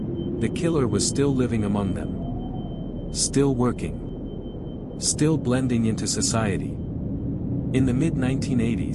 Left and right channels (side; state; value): both; identical; correlation 1.00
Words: The killer was still living among them. Still working. Still blending into society. In the